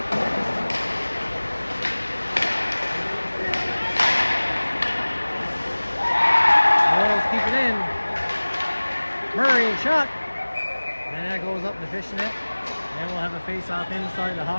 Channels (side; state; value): both; inverted; correlation -1.00